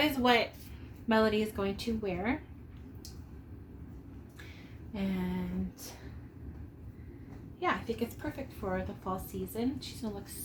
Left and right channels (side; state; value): both; identical; correlation 1.00